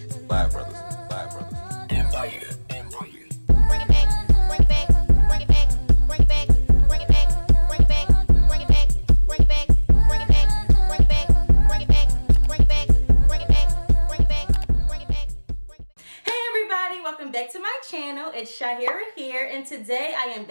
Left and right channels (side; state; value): both; inverted; correlation -1.00